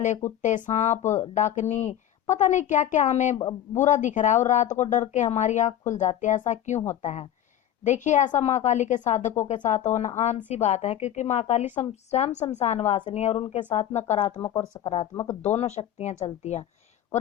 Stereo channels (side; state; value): right; quieter; 11.3 dB